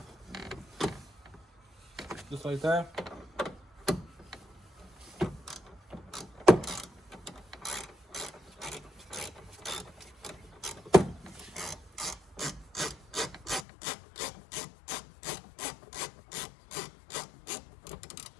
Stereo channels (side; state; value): right; drops out; at 13.7 s